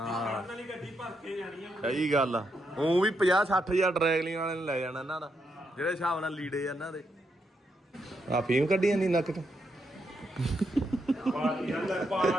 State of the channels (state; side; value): normal; both; correlation 0.81